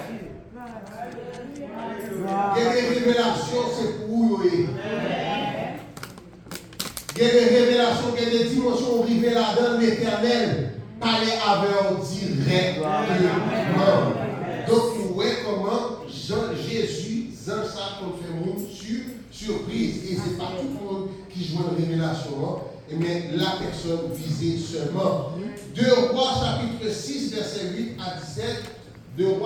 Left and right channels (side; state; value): both; identical; correlation 1.00